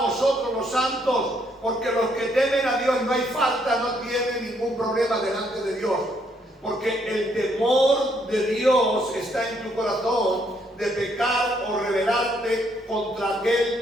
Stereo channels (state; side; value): normal; both; correlation 0.71